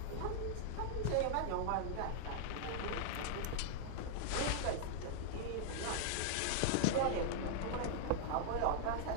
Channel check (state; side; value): different; both; correlation -0.01